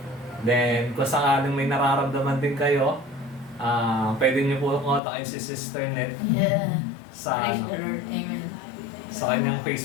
Then kung sakaling may nararamdaman din kayo, pwede niyo po kontakin si Sister Net sa kanyang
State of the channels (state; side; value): drops out; right; at 5.0 s